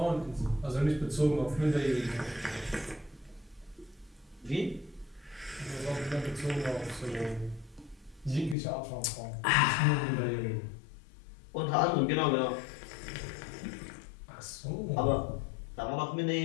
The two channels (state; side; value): drops out; right; at 8.6 s